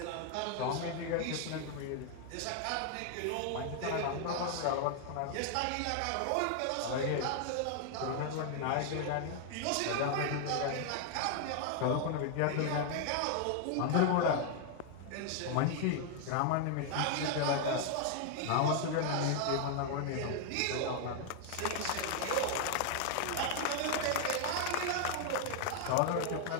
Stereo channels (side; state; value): both; different; correlation 0.00